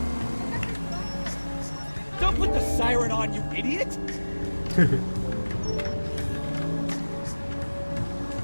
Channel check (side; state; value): both; inverted; correlation -1.00